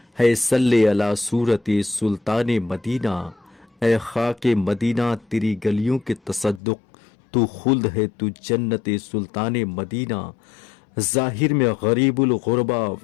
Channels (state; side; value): drops out; right; at 6.6 s